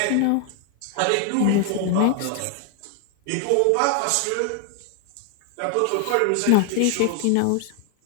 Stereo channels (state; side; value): different; both; correlation 0.00